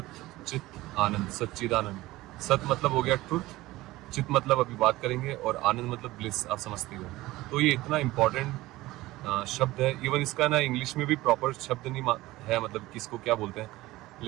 चित आनंद, सच्चिदानंद। सत मतलब हो गया ट्रुथ, चित मतलब अभी बात करेंगे, और आनंद मतलब ब्लिस, आप समझते हो। तो ये इतना इम्पोर्टेंट शब्द है, इवन इसका ना इंग्लिश में भी प्रॉपर शब्द नहीं है, मतलब किसको क्या बोलते हैं,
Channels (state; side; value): quieter; left; 18.1 dB